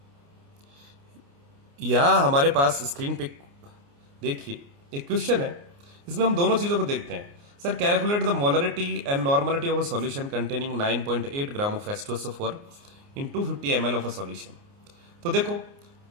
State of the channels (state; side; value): late; left; 29 ms